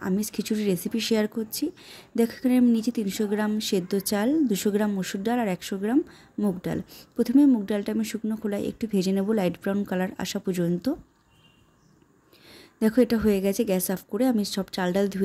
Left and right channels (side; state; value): both; identical; correlation 1.00